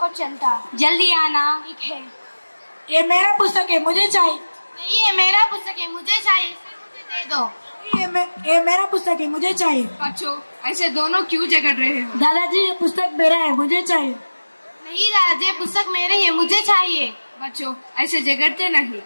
चलता। जल्दी आना। ठीक है। ये मेरा पुस्तक है, मुझे चाहिए। नहीं, ये मेरा पुस्तक है, मुझे चाहिए। मुझे दे दो। ये मेरा पुस्तक है, मुझे चाहिए। बच्चों, ऐसे दोनों क्यों झगड़ रहे हो? दादाजी, ये पुस्तक मेरा है, मुझे चाहिए। नहीं दादाजी, पुस्तक मेरे है, मुझे चाहिए। बच्चों, ऐसे झगड़ते नहीं,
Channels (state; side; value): inverted; both; correlation -1.00